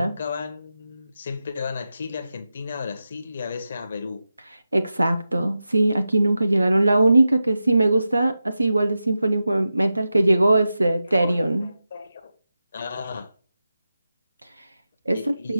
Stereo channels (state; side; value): inverted; both; correlation -0.92